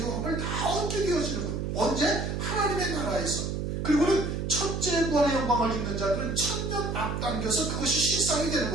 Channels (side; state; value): right; noise; hum, 2 dB below the sound